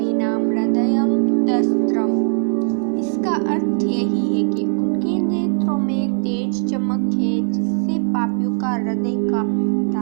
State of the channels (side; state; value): left; silent; digital silence